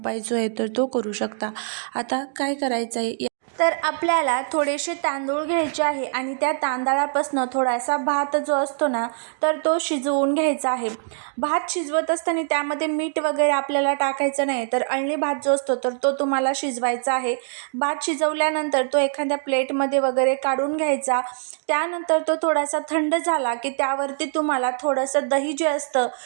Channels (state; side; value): silent; left; digital silence